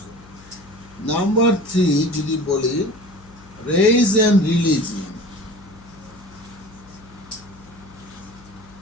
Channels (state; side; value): noise; left; hum, 23 dB below the sound